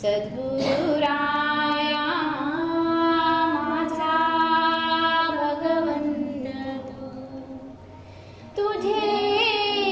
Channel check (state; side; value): identical; both; correlation 1.00